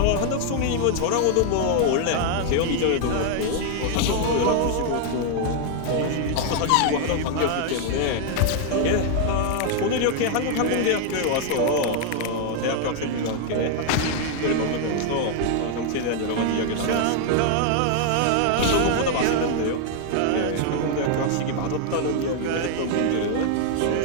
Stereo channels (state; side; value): different; both; correlation 0.00